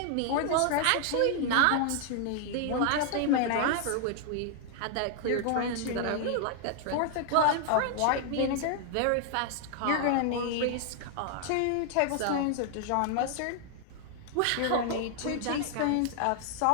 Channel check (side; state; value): both; different; correlation 0.00